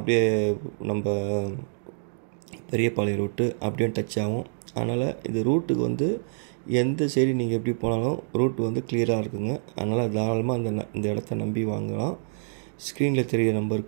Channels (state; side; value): silent; left; digital silence